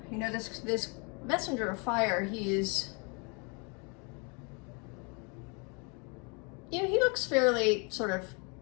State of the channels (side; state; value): right; quieter; 33.3 dB